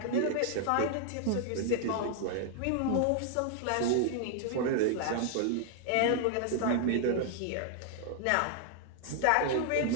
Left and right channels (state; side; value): different; both; correlation -0.01